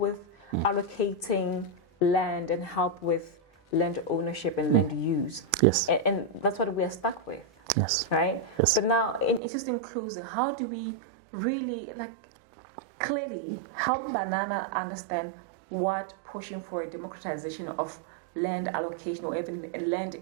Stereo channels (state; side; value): drops out; left; at 9.4 s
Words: allocating land and help with land ownership and land use. And that's what we are stuck with. Right? But now, in just in closing, how do we really clearly help Banana understand what pushing for a democratization of land allocation or even